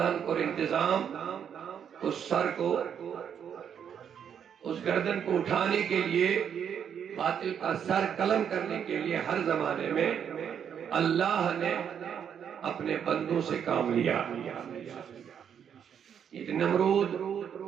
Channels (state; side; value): quieter; left; 8.2 dB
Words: کو انتظام اس سر کو اس گردن کو اٹھانے کے لیے باطل کا سر قلم کرنے کے لیے ہر زمانے میں اللہ نے اپنے بندوں سے کام لیا یہ نمرود